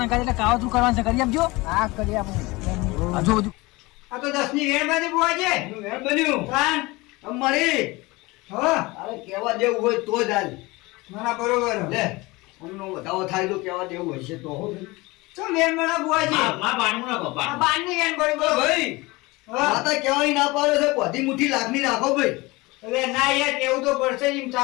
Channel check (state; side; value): quieter; right; 22.6 dB